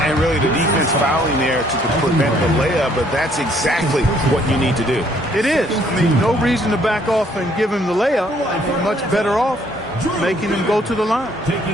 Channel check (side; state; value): both; normal; correlation 0.64